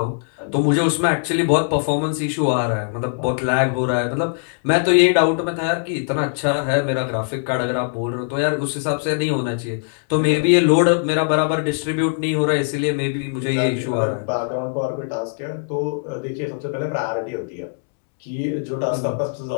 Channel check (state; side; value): silent; right; digital silence